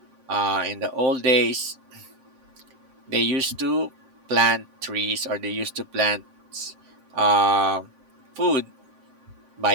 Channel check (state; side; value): late; left; 7.5 ms